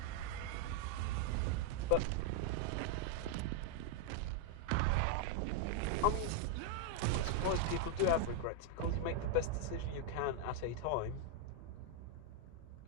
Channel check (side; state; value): both; different; correlation 0.00